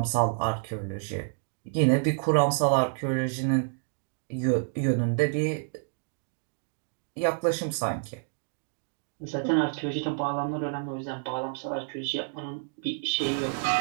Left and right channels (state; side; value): silent; left; digital silence